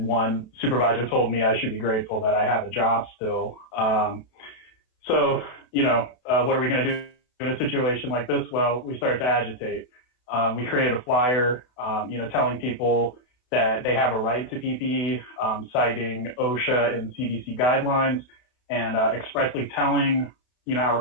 supervisor told me I should be grateful that I have a job still. So, what are we going to do in a situation like this? Well, we started to agitate. We created a flyer, telling people that they have a right to PPE, citing OSHA and CDC guidelines, and expressly telling, our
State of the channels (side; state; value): right; late; 32 ms